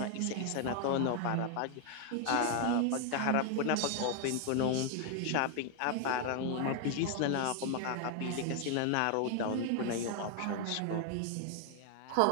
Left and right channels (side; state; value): both; different; correlation 0.01